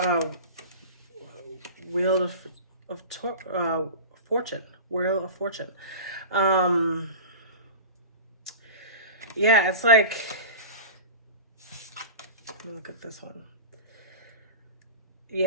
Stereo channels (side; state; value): both; inverted; correlation -0.31